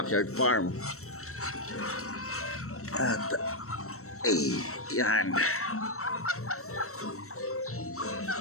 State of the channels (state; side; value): late; right; 0.63 ms